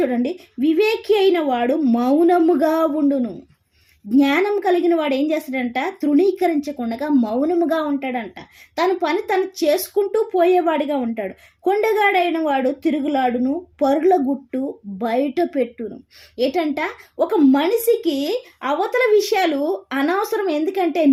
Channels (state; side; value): identical; both; correlation 1.00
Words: చూడండి, వివేకి అయిన వాడు మౌనముగా ఉండును. జ్ఞానం కలిగిన వాడు ఏం చేస్తాడంట, తృణీకరించకుండా మౌనముగా ఉంటాడంట. తన పని తను చేసుకుంటూ పోయేవాడిగా ఉంటాడు. కొండగాడైన వాడు తిరుగులాడును, పరుల గుట్టు బయట పెట్టును. ఏంటంట, ఒక మనిషికి అవతల విషయాలు అనవసరం. ఎందుకంటే